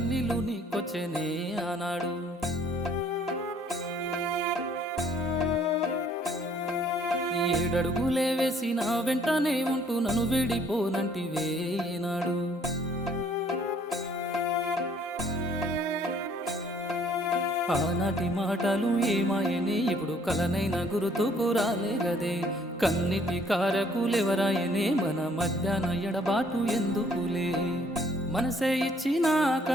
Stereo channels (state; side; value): normal; both; correlation 0.61